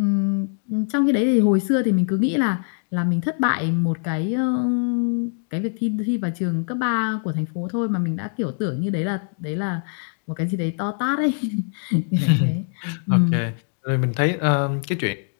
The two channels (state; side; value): silent; right; 56 dB below the other